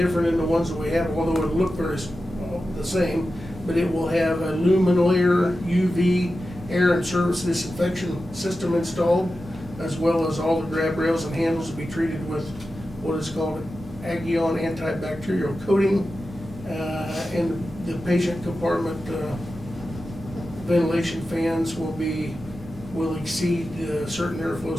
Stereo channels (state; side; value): normal; both; correlation 0.92